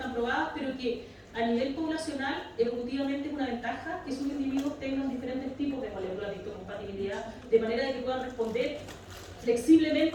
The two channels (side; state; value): both; identical; correlation 1.00